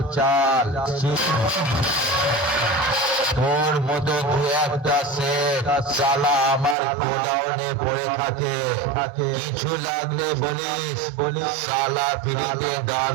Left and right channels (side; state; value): left; drops out; at 6.8 s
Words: তোর মতো দু একটা সেট শালা আমার গোডাউনে পড়ে থাকে। কিছু লাগলে বলিস শালা ফ্রিতে দান